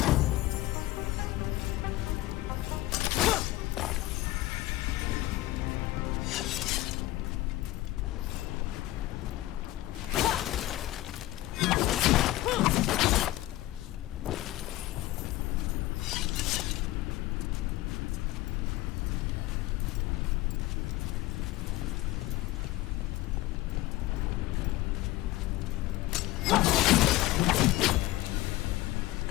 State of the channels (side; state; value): right; quieter; 17.1 dB